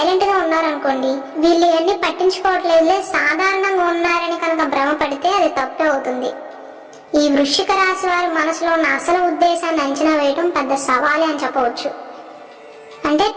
గా ఉన్నారనుకోండి, వీళ్ళు ఇవన్నీ పట్టించుకోవట్లేదులే సాధారణంగా ఉన్నారని కనుక భ్రమపడితే అది తప్పే అవుతుంది. ఈ వృశ్చిక రాశి వారి మనసులో ఉన్న అసలు ఉద్దేశాన్ని అంచనా వేయడం పెద్ద సవాలే అని చెప్పవచ్చు. అంటే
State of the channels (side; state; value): both; identical; correlation 1.00